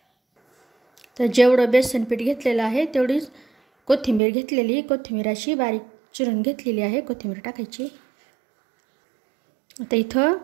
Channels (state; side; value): drops out; left; at 4.2 s